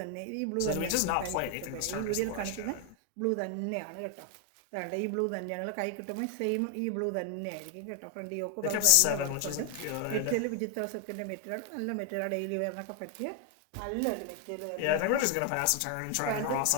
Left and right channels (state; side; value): different; both; correlation 0.00